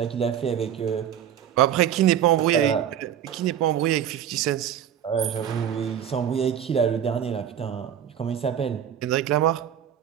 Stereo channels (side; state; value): left; quieter; 9.6 dB